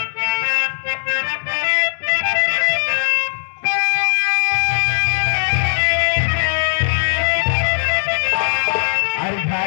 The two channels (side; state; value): right; silent; digital silence